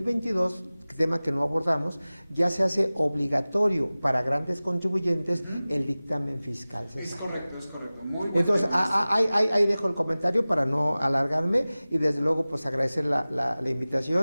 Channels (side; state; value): both; inverted; correlation -0.98